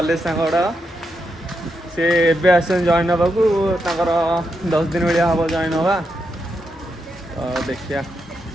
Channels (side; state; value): both; normal; correlation 0.83